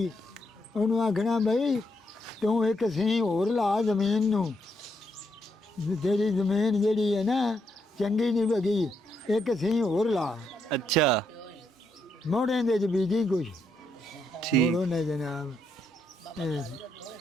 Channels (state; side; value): normal; both; correlation 0.78